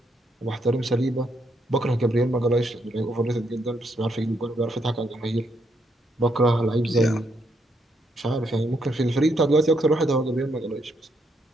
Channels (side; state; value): both; normal; correlation 0.76